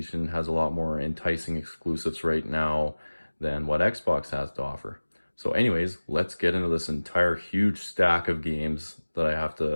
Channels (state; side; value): inverted; both; correlation -1.00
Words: has a lot more enticing exclusives right now than what Xbox has to offer. So anyways, let's get into this entire huge stack of games that I have